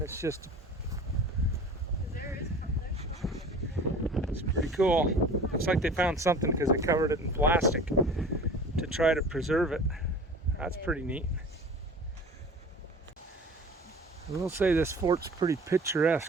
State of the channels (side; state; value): both; normal; correlation 0.41